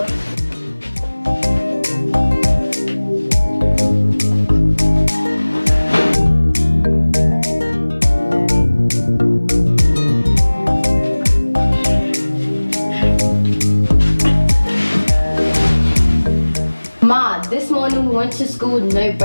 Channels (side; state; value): both; inverted; correlation -1.00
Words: this morning we went to school with no